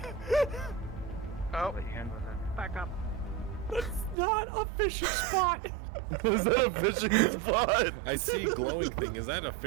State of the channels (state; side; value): drops out; left; at 4.2 s